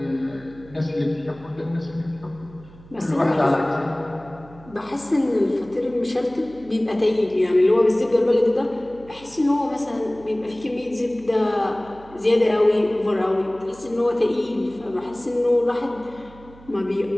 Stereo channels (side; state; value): right; noise; hum, 22 dB below the sound